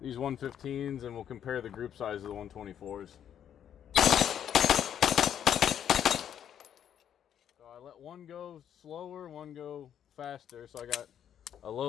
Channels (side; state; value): right; quieter; 9.5 dB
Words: these 115s, and we'll compare the group size of the 124s. So I let one go slower, one go faster. So I got a